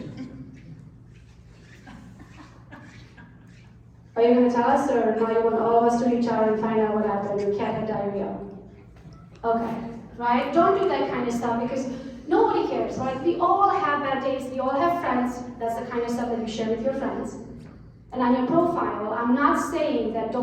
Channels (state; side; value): identical; both; correlation 1.00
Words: Are you going to tell us, or now you want all of us to reach out and find out what happened? Your cat had diarrhea. Okay, right? Don't do that kind of stuff because nobody cares, right? We all have bad days. We all have friends. That's the kind of stuff that you share with your friends. And on your profile, I'm not saying that